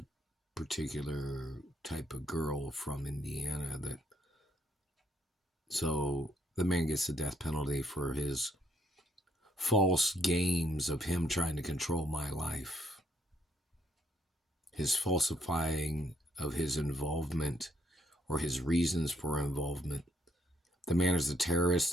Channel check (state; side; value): normal; both; correlation 0.72